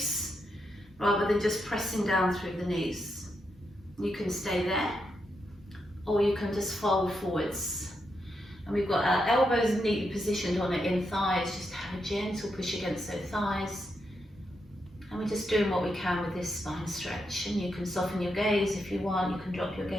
rather than just pressing down through the knees. You can stay there, or you can just fold forwards. And we've got our elbows neatly positioned on our in thighs, just have a gentle push against those thighs. And we're just doing what we can with this spine stretch. And you can soften your gaze if you want, you can drop your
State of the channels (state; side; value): normal; both; correlation 0.83